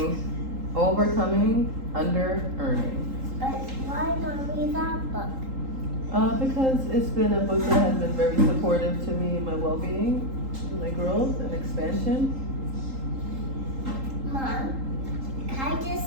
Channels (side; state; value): left; late; 3.8 ms